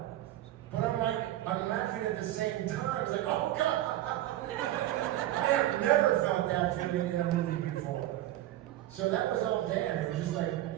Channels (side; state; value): left; quieter; 14.3 dB